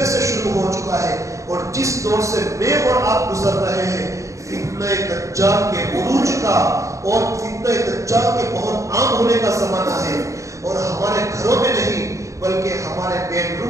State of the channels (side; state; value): left; late; 0.15 ms